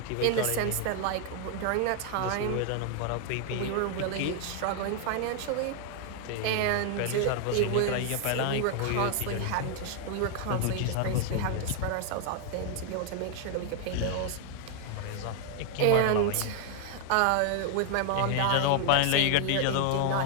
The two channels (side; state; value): both; different; correlation 0.00